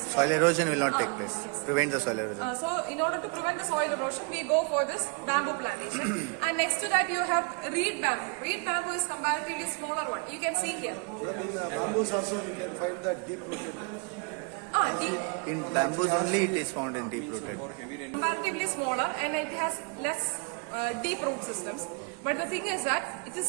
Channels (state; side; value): quieter; left; 34.4 dB